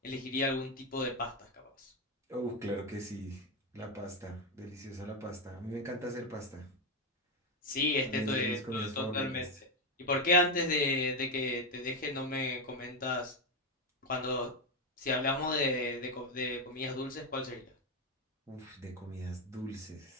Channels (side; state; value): both; normal; correlation 0.09